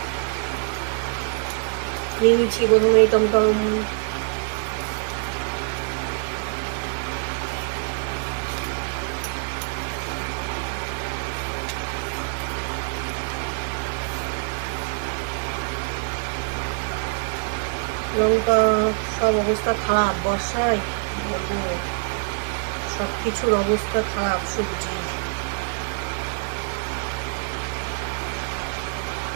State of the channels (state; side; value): quieter; left; 36.5 dB